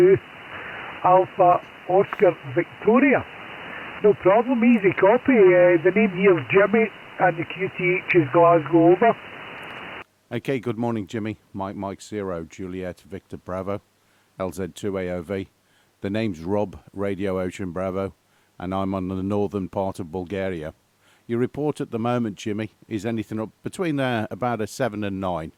Alpha Oscar Victoria. No problem, easy copy. The name here is Jimmy and the QTH is Glasgow over. Okay, good morning, Jimmy. Mike 0, Juliet Victor Bravo, LZ2AOV. The name's Rob, Radio Ocean Bravo, and I'm on the northern part of Bulgaria. Your report at the moment, Jimmy, is anything up between about a 7 and 9.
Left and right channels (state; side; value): identical; both; correlation 1.00